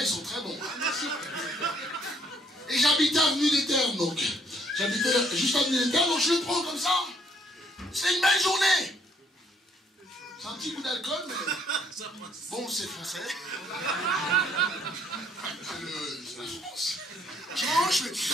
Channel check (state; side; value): normal; both; correlation 0.66